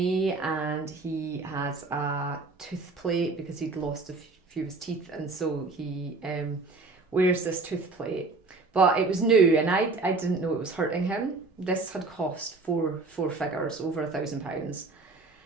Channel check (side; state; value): left; quieter; 3.7 dB